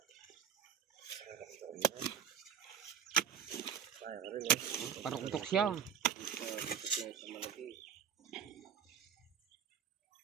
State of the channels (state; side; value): quieter; left; 8.1 dB